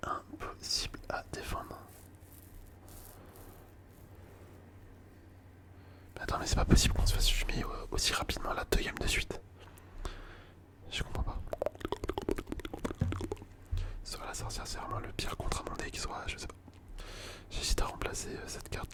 impossible à défendre. Mais attends, mais c'est pas possible qu'on se fasse fumer aussi rapidement là 2 games de suite. Je comprends pas. Soit la sorcière, c'est vraiment le pire contre mon deck, soit je sais pas. J'hésite à remplacer cette carte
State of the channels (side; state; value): both; identical; correlation 1.00